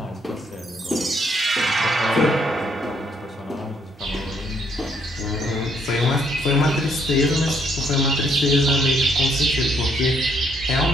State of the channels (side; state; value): both; normal; correlation 0.70